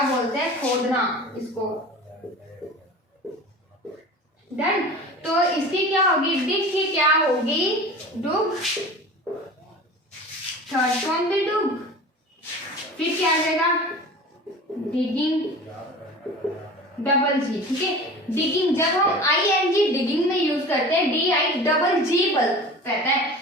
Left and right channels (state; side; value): normal; both; correlation 0.38